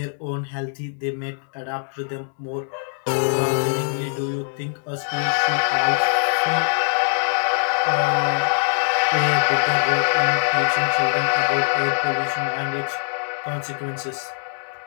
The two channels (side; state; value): right; silent; 64 dB below the other